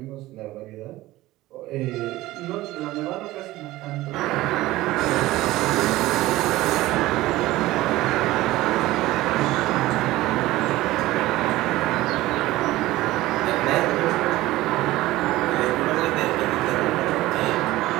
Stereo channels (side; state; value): left; quieter; 17.4 dB